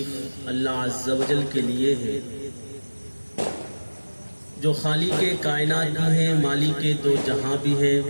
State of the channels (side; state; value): both; inverted; correlation -1.00